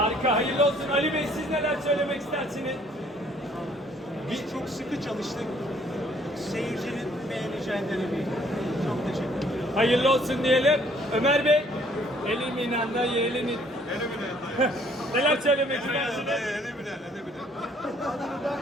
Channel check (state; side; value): normal; both; correlation 0.61